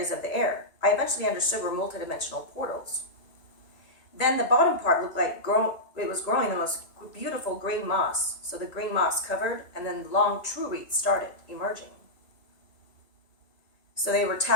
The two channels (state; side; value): late; right; 1.9 ms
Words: of the air. I eventually understood were multidimensional portals. Then the bottom part looked like it was growing the most beautiful green moss. So the green moss covered, and then the long true roots started emerging. So they were